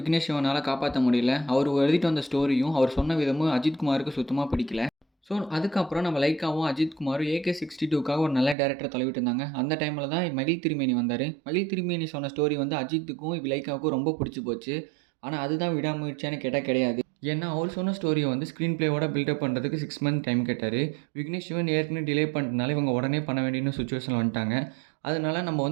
சிவனால் காப்பாற்ற முடியல. அவர் எழுதிட்டு வந்த ஸ்டோரியும் அவர் சொன்ன விதமும் அஜித் குமாருக்கு சுத்தமாக பிடிக்கல. ஸோ அதுக்கப்புறம் நம்ம லைக்காவும் அஜித் குமாரும் AK-62க்காக ஒரு நல்ல டேரக்டர் தழுவிட்டு இருந்தாங்க. அந்த டைமில் தான் மகிழ் திருமேனி வந்தார். மகிழ் திருமேனி சொன்ன ஸ்டோரி வந்து அஜித்துக்கும் லைக்காவுக்கும் ரொம்ப பிடிச்சி போச்சு. ஆனால் அதுதான் விடாமுயற்சியான்னு கேட்டால் கிடையாது. ஏன்னா அவர் சொன்ன ஸ்டோரியை வந்து ஸ்க்ரீன் பிளேவோட பில்டப் பண்ணுறதுக்கு 6 மந்த் டைம் கேட்டார். விக்னேஷ் சிவன் ஏற்கனவே டிலே பண்ணுறதுனால இவங்க உடனே பண்ண வேண்டிய சுச்சுவேஷன் வந்துட்டாங்க. அதனால நம்ம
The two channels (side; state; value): left; drops out; at 8.6 s